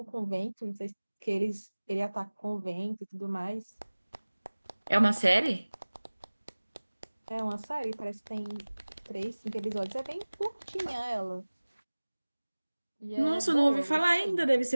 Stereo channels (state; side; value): inverted; both; correlation -1.00